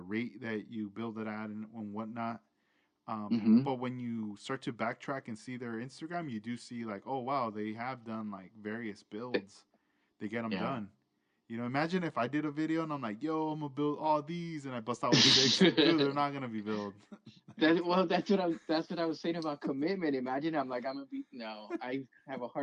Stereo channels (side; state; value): both; identical; correlation 1.00